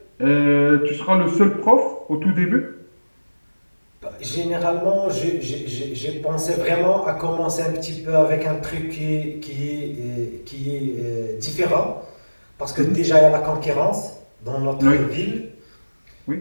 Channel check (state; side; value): inverted; both; correlation -1.00